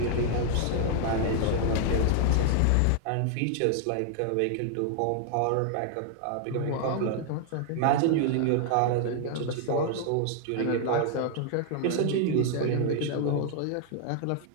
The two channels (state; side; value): different; both; correlation 0.00